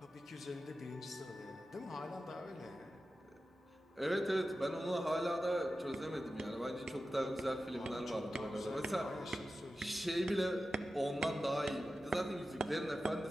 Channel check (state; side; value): normal; both; correlation 0.93